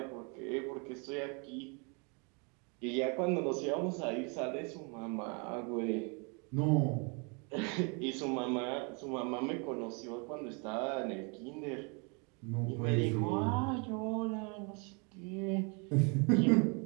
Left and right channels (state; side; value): quieter; left; 33.9 dB